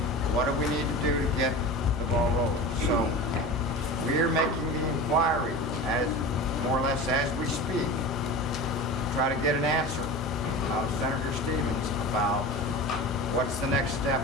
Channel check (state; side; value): normal; both; correlation 0.31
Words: What do we need to do to get the ball rolling? So we are making the inquiry, as more or less as we speak, try to get an answer out of Senator Stevens about what's the next step,